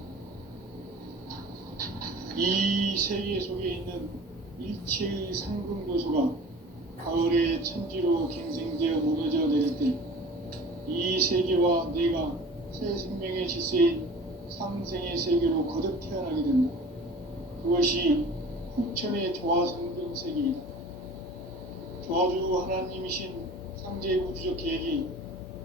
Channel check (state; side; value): normal; both; correlation 0.42